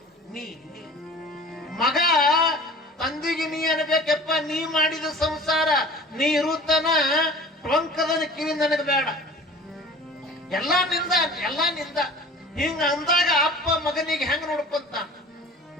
ನೀ ಮಗ ತಂದಿಗೆ ನೀ ಅನ್ಬೇಕಪ್ಪ, ನೀ ಮಾಡಿದ ಸಂಸಾರ ನೀ ಇರುತ್ತನ ಟೊಂಕದನ ಕಿವಿ ನನಗೆ ಬೇಡ, ಎಲ್ಲಾ ನಿಂದ, ಎಲ್ಲಾ ನಿಂದ. ಹಿಂಗ ಅಂದಾಗ ಅಪ್ಪ ಮಗನಿಗೆ ಹೆಂಗ ನೋಡ್ಕೊಂತಾನ?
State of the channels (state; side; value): normal; both; correlation 0.42